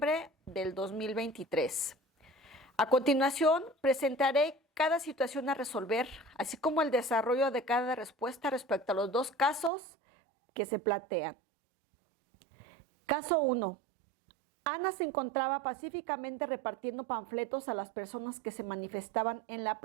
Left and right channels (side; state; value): left; drops out; at 9.7 s